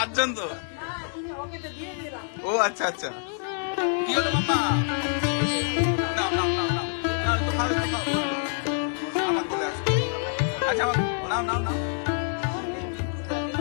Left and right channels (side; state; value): right; silent; 57 dB below the other